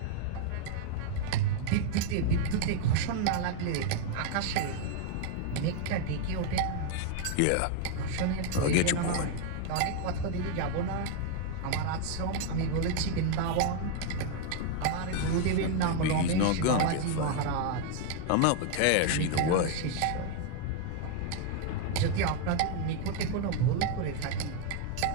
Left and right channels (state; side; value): different; both; correlation 0.00